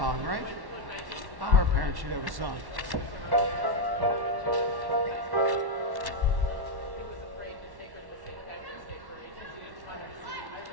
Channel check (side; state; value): left; late; 1.1 ms